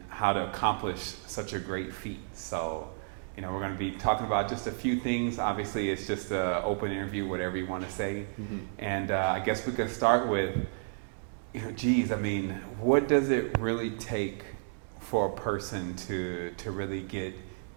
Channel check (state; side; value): silent; left; digital silence